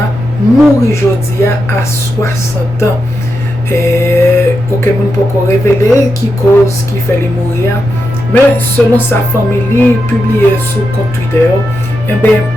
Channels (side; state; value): both; normal; correlation 0.87